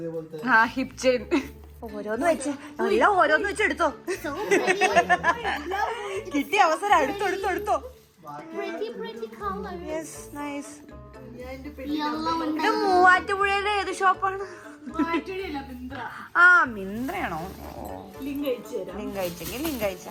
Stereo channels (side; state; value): both; identical; correlation 1.00